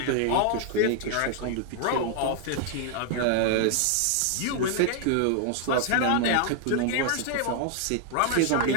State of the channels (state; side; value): different; both; correlation 0.00